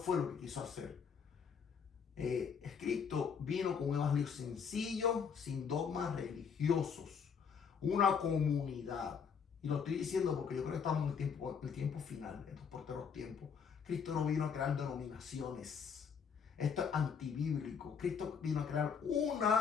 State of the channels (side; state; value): right; quieter; 6.6 dB